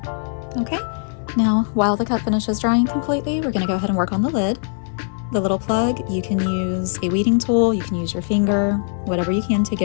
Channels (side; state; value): right; silent; 65 dB below the other